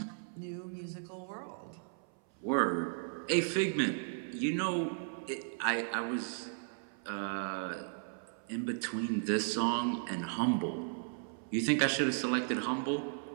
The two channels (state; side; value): silent; left; 54 dB below the other